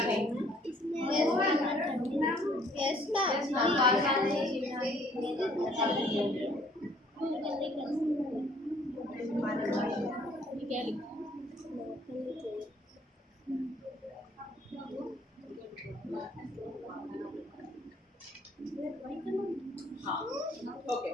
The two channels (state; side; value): normal; both; correlation 0.60